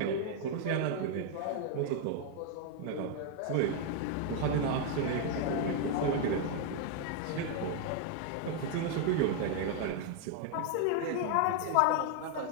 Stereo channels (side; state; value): both; different; correlation 0.00